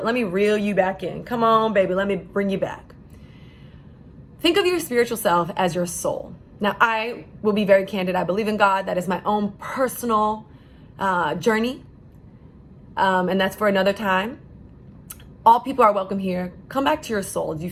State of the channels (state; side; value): identical; both; correlation 1.00